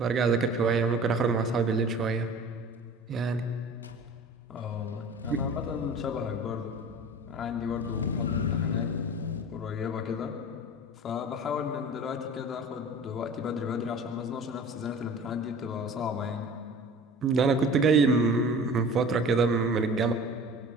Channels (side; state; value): both; normal; correlation 0.41